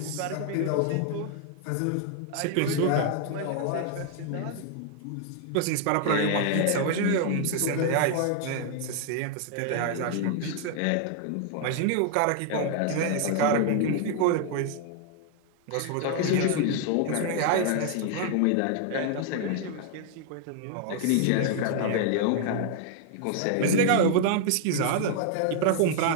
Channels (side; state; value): both; different; correlation 0.00